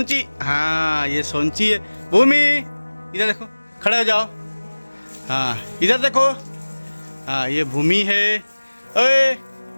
हाँ ये सोंची है। भूमि इधर देखो, खड़े हो जाओ। हाँ इधर देखो, हाँ ये भूमि है। ओए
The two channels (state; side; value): inverted; both; correlation -1.00